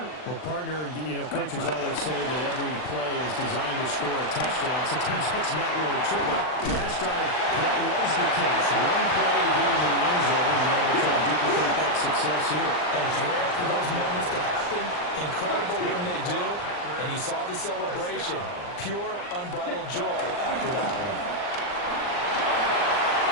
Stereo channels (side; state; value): right; late; 39 ms